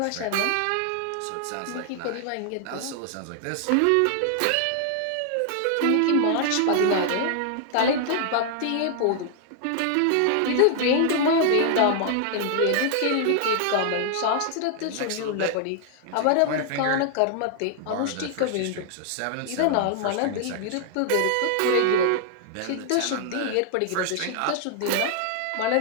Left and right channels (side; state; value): both; different; correlation 0.00